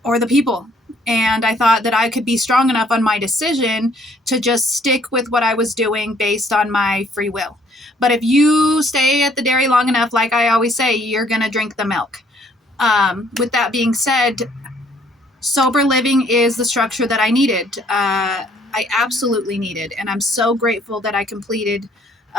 or the people. And I thought that I could be strong enough on my decision to just stick with what I was doing based on my free will. But if you stay at the dairy long enough, like I always say, you're going to drink the milk. With that being said, sober living is the structure that I needed. I absolutely needed. And I'm so grateful that I completed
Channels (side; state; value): both; normal; correlation 0.63